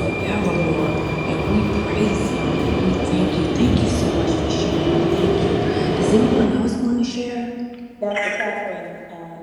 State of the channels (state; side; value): identical; both; correlation 1.00